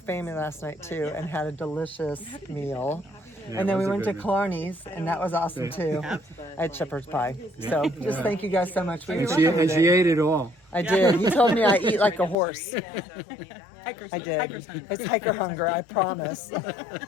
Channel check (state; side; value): drops out; right; at 12.4 s